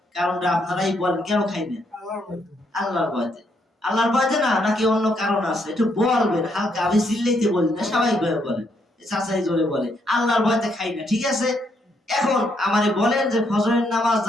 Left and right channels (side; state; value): both; normal; correlation 0.75